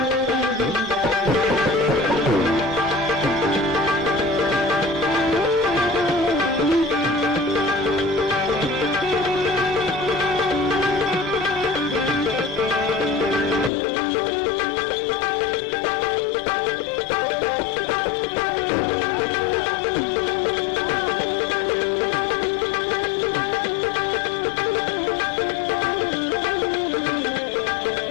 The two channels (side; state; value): right; drops out; at 13.7 s